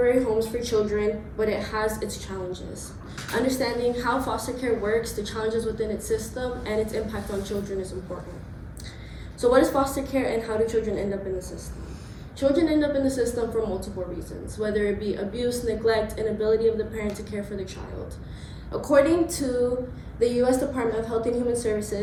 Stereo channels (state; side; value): identical; both; correlation 1.00